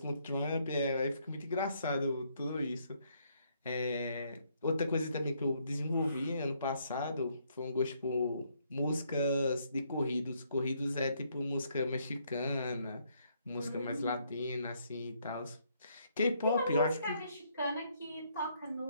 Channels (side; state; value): both; inverted; correlation -0.71